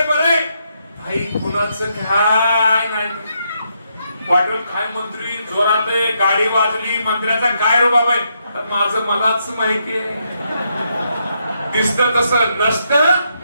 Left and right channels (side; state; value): both; inverted; correlation -0.79